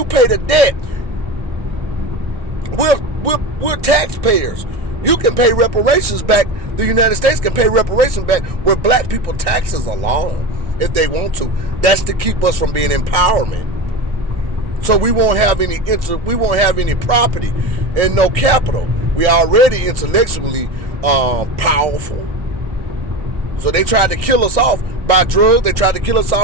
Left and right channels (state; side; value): late; left; 1.6 ms